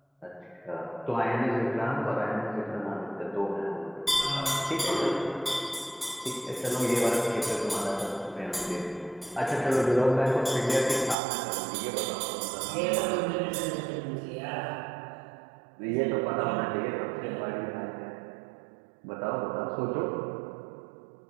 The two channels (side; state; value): left; drops out; at 11.2 s